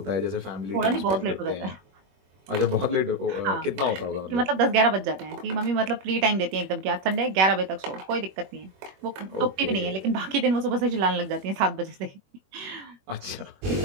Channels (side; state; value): left; late; 21 ms